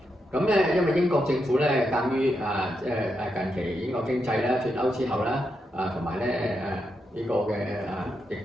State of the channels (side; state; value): both; normal; correlation 0.84